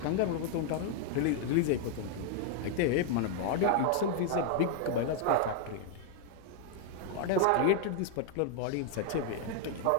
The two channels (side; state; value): both; different; correlation 0.00